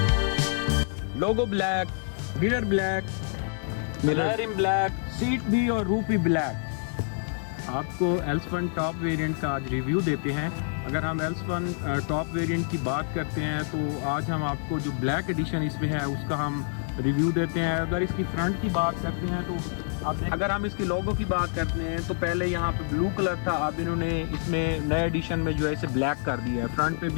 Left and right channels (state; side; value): silent; right; digital silence